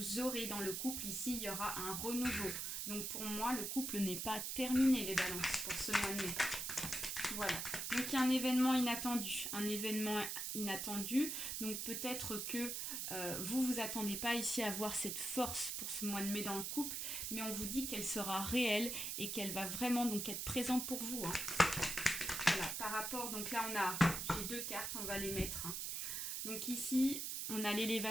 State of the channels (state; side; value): noise; right; hiss, 3 dB below the sound